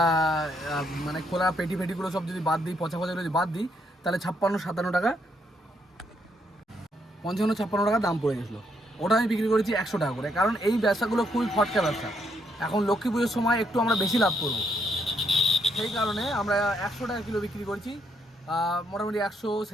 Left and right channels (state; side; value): normal; both; correlation 0.75